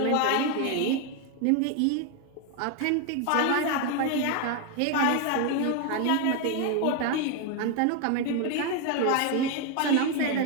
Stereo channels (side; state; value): both; different; correlation 0.01